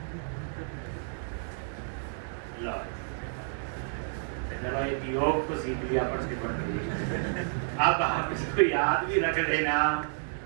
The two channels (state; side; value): silent; left; digital silence